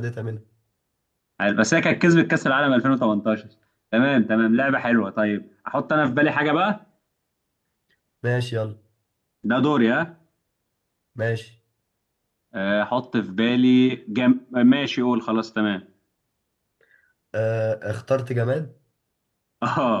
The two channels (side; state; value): both; identical; correlation 1.00